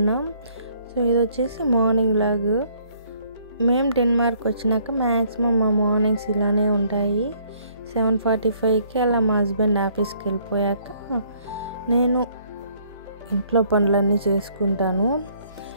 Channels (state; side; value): inverted; both; correlation -0.63